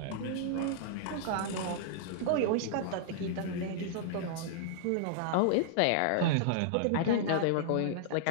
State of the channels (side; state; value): both; different; correlation -0.01